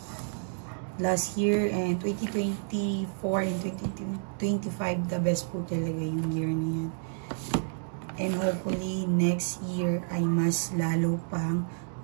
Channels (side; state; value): left; silent; digital silence